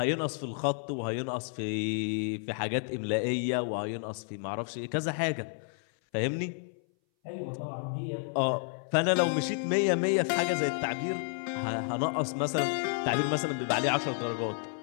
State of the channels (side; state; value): right; silent; 57 dB below the other